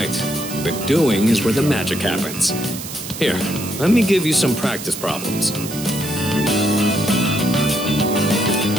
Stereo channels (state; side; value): noise; right; hiss, 10 dB below the sound